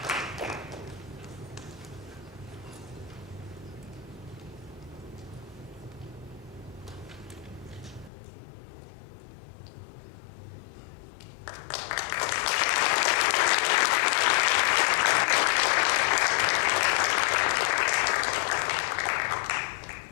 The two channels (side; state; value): right; drops out; at 8.1 s